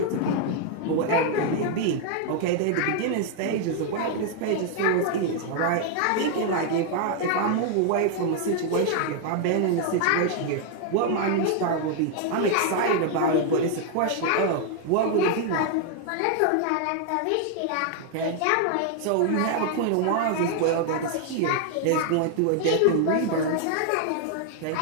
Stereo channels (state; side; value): different; both; correlation 0.00